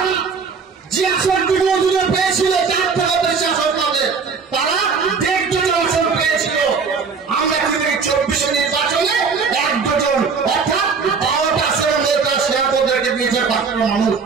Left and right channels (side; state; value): left; quieter; 5.3 dB